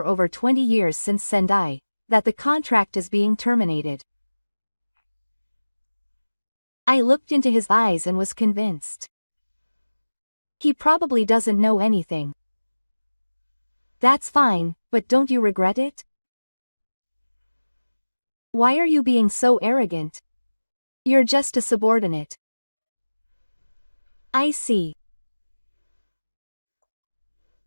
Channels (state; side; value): inverted; both; correlation -1.00